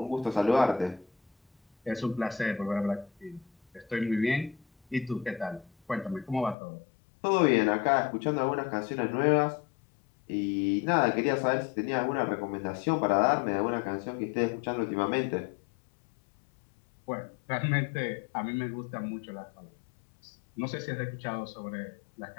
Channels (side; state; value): right; drops out; at 6.6 s